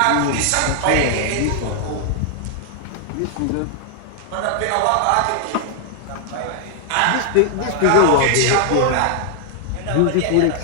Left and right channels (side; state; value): both; different; correlation 0.00